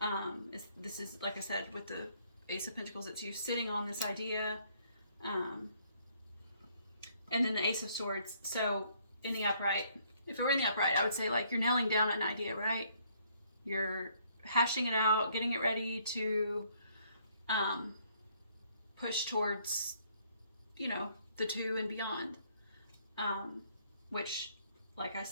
This is, like I said, with the Ace of Pentacles, it's you sitting on this idea. And then the Ace of Swords. So in the upright, if it were in the upright, I would say like you're nailing down an idea, right? You're hashing it out, getting it ready to push towards, you know, the 2 and beyond. Which, like I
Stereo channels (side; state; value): both; inverted; correlation -0.66